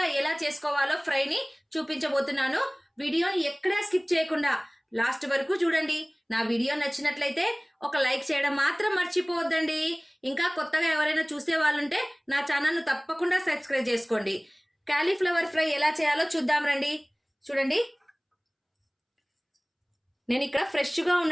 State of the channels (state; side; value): identical; both; correlation 1.00